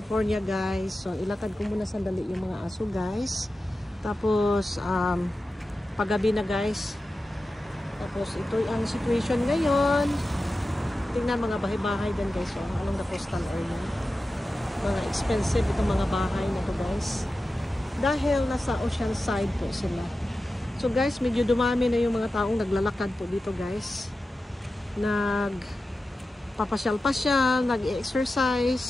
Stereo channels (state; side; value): normal; both; correlation 0.93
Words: guys. So ilakad ko muna sandali yung mga aso guys. Tapos paggabi na guys. Tapos ito ang situation ngayon. Tingnan mga bahay-bahay din guys. So, along the coastal area. Mga expensive itong mga bahay na to guys. Dahil nasa ocean side po sila. So guys, medyo dumami na yung mga taong naglalakad po dito guys. Nagpapasyal-pasyal,